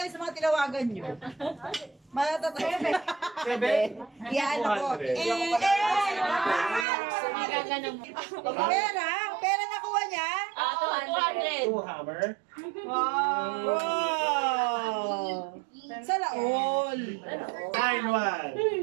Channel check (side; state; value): left; drops out; at 6.9 s